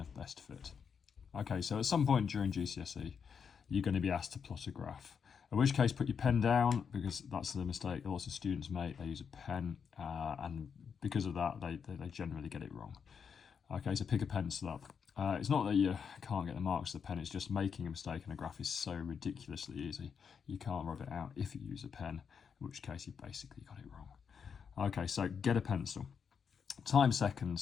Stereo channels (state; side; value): quieter; right; 6.6 dB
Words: of best fit. Okay, so at some point during GCSE, you're going to be asked to plot a graph. In which case, put your pen down, because that's the mistake that lots of students make. They use a pen, and because of that, they generally get it wrong. Okay, so pick a pencil up. It's not that you can't get the marks of the pen, it's just making a mistake in a graph is so ridiculously easy. You can't rub it out if you use a pen, in which case you basically got it wrong. Okay, so get a pencil. Time